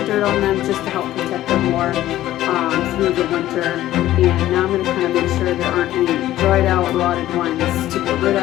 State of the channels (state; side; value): quieter; right; 14.1 dB